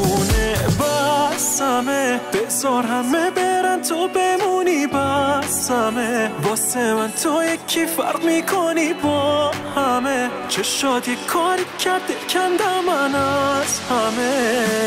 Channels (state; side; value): identical; both; correlation 1.00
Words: بسمه بذار همه برن تو بمونی بسمه واسه من تو یکی فرق میکنی با همه چشات یک کاری کرده کندم من از